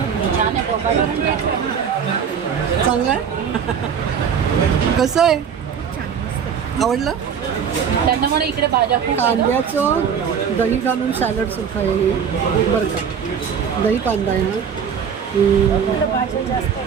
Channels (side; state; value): left; quieter; 7.3 dB